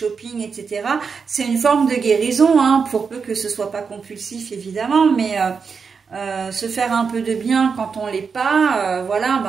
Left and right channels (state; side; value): quieter; left; 5.6 dB